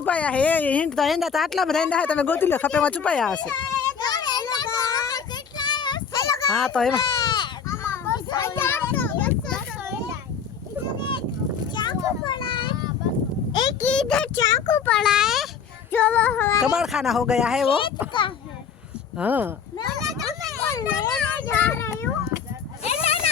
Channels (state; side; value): quieter; right; 6.7 dB